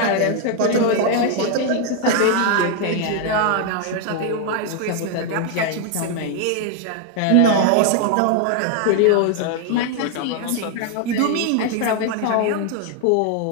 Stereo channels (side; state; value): both; different; correlation 0.01